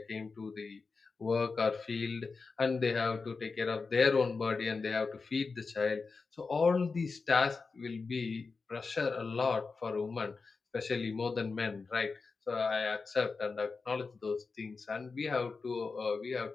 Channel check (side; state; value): right; quieter; 4.4 dB